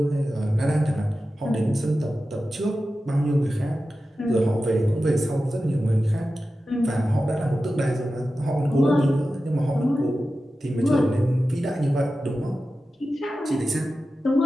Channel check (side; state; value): both; normal; correlation 0.93